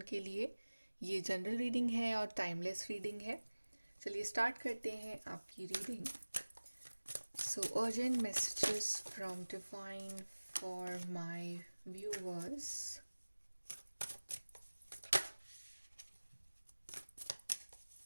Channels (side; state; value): both; inverted; correlation -1.00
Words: के लिए। ये जनरल रीडिंग है और टाइमलेस रीडिंग है। चलिए स्टार्ट करते हैं आपकी reading. So urgent messages from divine for my viewers.